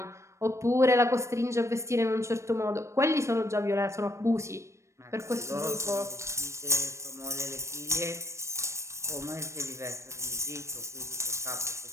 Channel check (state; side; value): late; left; 0.14 ms